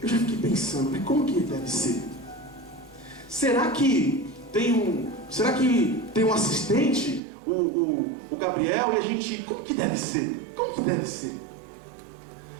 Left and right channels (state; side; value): drops out; left; at 7.2 s